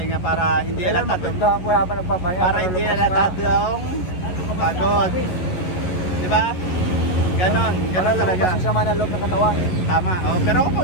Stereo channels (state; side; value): late; right; 11 ms